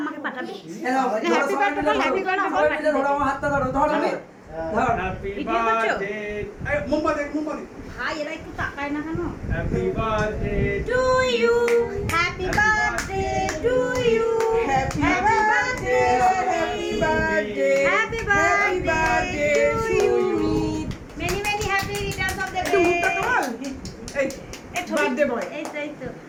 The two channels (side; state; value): both; identical; correlation 1.00